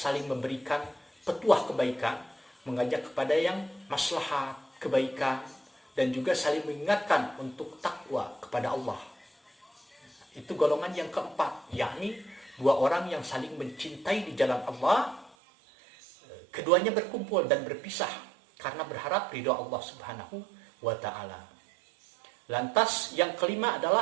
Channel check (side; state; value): left; drops out; at 15.4 s